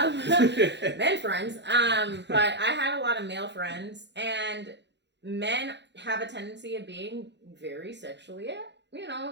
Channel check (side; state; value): left; late; 0.51 ms